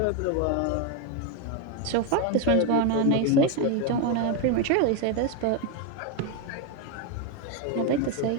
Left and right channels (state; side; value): different; both; correlation 0.02